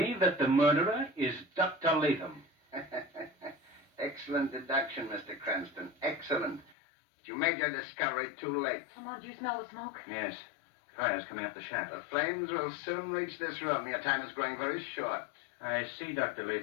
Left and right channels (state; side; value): drops out; right; at 6.8 s